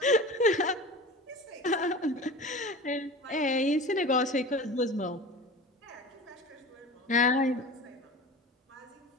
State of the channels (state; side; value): normal; both; correlation 0.35